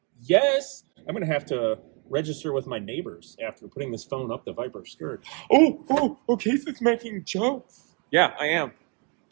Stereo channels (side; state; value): left; quieter; 35.6 dB